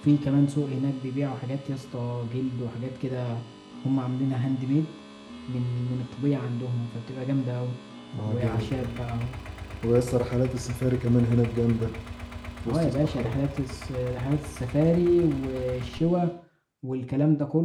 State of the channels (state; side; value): identical; both; correlation 1.00